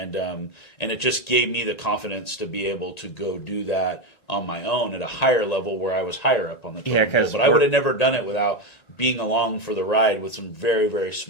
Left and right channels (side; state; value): right; late; 1.9 ms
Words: it just gave me the confidence to be able to go do that on my own at a higher level where I was higher up on the totem pole. But I would have never done it without being along for the ride with some very, very